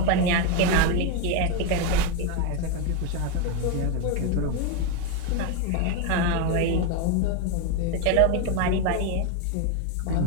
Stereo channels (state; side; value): different; both; correlation 0.02